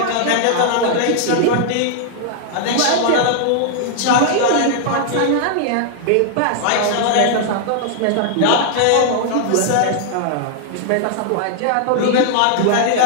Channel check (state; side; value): different; both; correlation -0.01